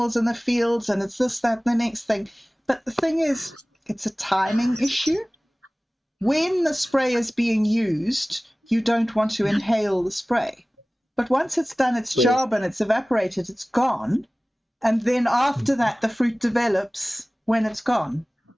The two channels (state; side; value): normal; both; correlation 0.98